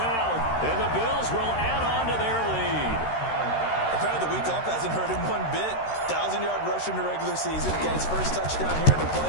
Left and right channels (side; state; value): right; late; 13 ms